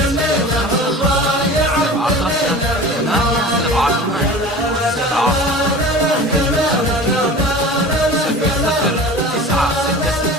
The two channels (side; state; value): both; normal; correlation 0.38